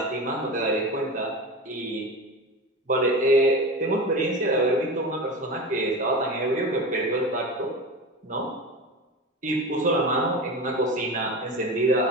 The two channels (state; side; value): normal; both; correlation 0.26